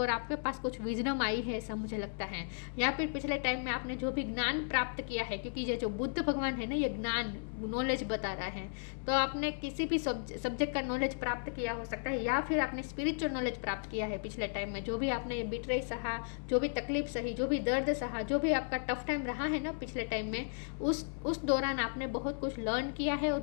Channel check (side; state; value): right; silent; 55 dB below the other